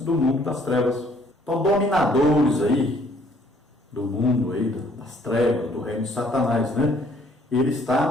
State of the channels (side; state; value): both; normal; correlation 0.62